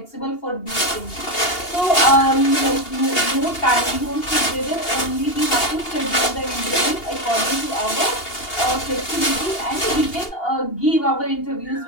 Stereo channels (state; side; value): late; right; 2.8 ms